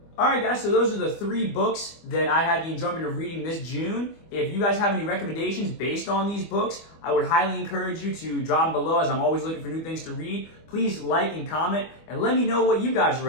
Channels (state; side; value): late; right; 25 ms